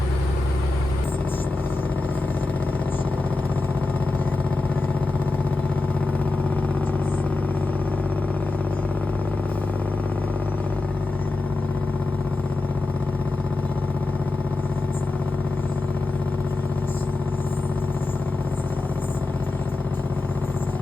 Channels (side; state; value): right; quieter; 3.1 dB